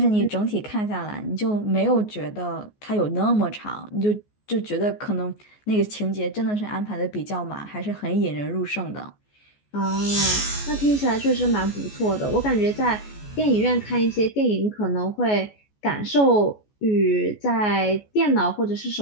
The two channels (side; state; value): right; late; 14 ms